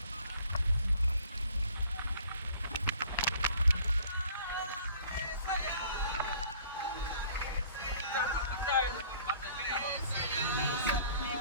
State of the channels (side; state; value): both; inverted; correlation -0.53